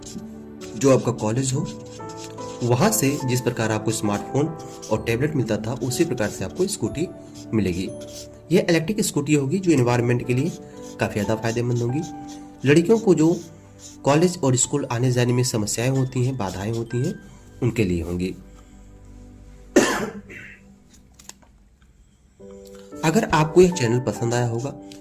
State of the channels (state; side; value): identical; both; correlation 1.00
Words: जो आपका कॉलेज हो, वहां से जिस प्रकार आपको स्मार्टफोन और टैबलेट मिलता था उसी प्रकार से आपको स्कूटी मिलेगी। यह इलेक्ट्रिक स्कूटी होगी जो एनवायरनमेंट के लिए काफी ज्यादा फायदेमंद होगी। लड़कियों को जो कॉलेज और स्कूल आने जाने में समस्याएं होती हैं, बाधाएं होती हैं, उनके लिए होंगी। अगर आपको यह चैनल पसंद आया होगा,